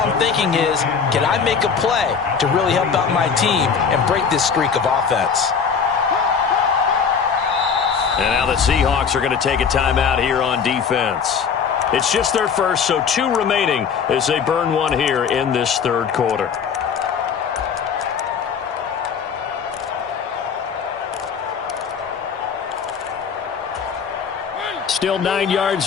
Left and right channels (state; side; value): quieter; right; 6.4 dB